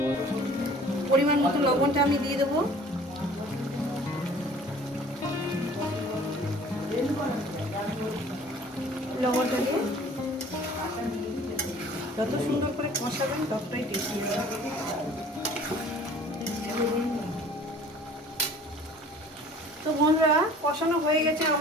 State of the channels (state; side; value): normal; both; correlation 0.49